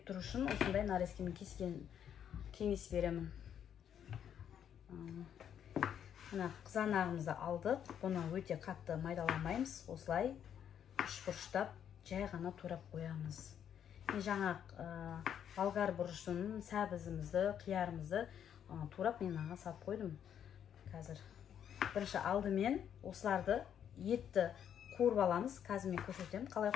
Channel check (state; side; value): quieter; right; 9.1 dB